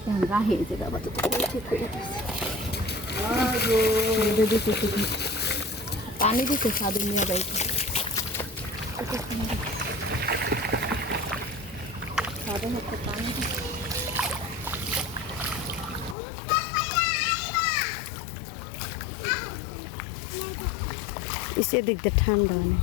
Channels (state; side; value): drops out; right; at 16.2 s